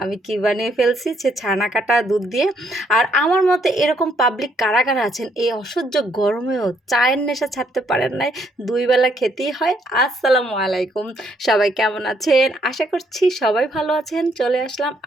আমি কী বানিয়ে ফেলছি, সে ছানা কাটা দুধ দিয়ে। আর আমার মতে এরকম পাবলিক কারা কারা আছেন এই অসহ্য গরমেও চায়ের নেশা ছাড়তে পারেন নাই, দুই বেলা খেতেই হয়। আসসালামু আলাইকুম, সবাই কেমন আছেন? আশা করছি সবাই ভালো আছেন। চলে আসলাম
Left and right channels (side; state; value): both; normal; correlation 0.70